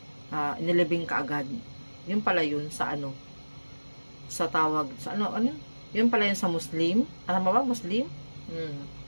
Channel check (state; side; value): inverted; both; correlation -1.00